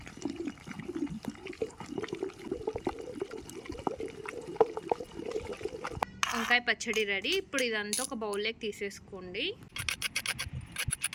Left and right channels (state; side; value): identical; both; correlation 1.00